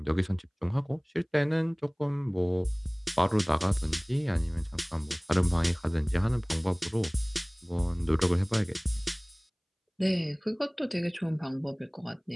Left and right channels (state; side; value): identical; both; correlation 1.00